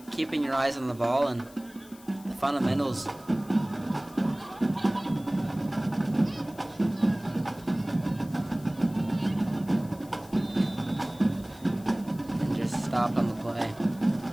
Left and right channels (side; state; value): left; noise; hiss, 23 dB below the sound